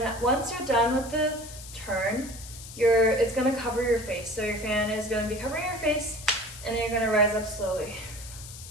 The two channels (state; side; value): noise; left; hiss, 14 dB below the sound